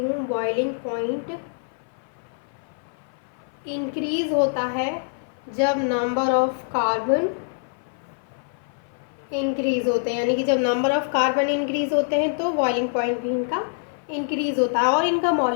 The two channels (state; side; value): silent; right; 56 dB below the other